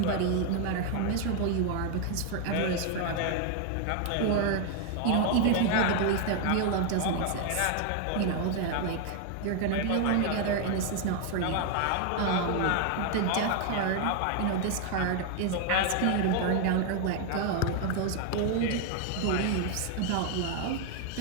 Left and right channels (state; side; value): different; both; correlation 0.00